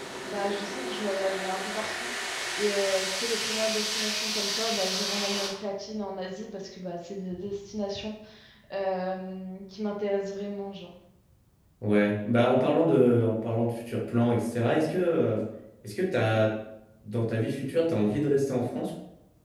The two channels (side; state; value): both; identical; correlation 1.00